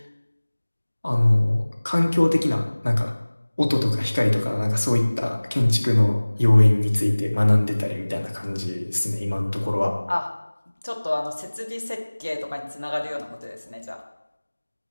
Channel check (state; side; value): inverted; both; correlation -1.00